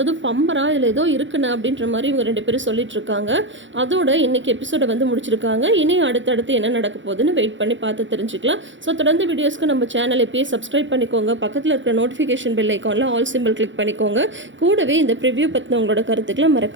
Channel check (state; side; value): late; left; 0.55 ms